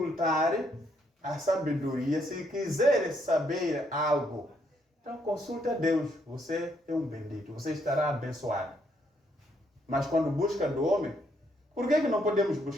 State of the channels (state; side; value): normal; both; correlation 0.73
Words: a sabedoria, se quiser saber algo. Então consulta Deus, você é um bendito, você estará abençoado. Mas quando busca do homem, por que não podemos